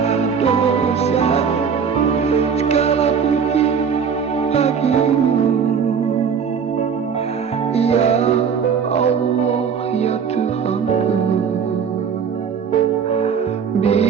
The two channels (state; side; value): quieter; left; 6.8 dB